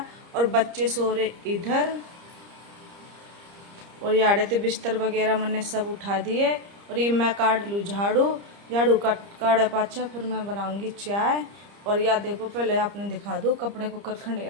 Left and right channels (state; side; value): late; left; 30 ms